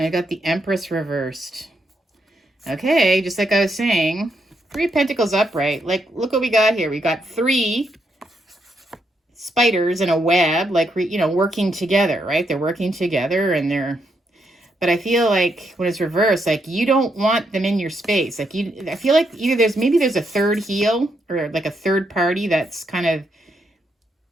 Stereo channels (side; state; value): both; normal; correlation 0.79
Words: I got the Empress reversed. Okay, just like I was saying, Three of Pentacles upright. Like, look what we got here. We got three spiders in a web, like, working together, right? They're working together and they're... But I feel like when it's reversed, like you don't want them in your space. Like I feel like either there's a third heel or like a third party that's kind of